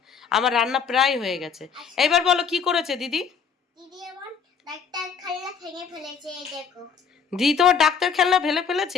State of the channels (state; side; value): quieter; right; 6.4 dB